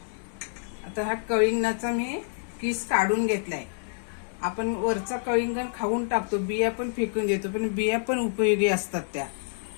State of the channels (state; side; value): silent; right; digital silence